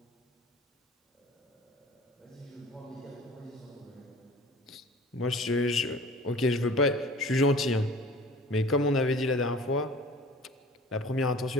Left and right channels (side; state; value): both; normal; correlation 0.45